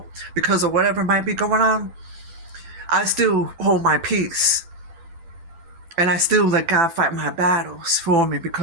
because of whatever might be going on, I still hold my peace. And I still let God fight my battles for me,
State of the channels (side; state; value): left; late; 12 ms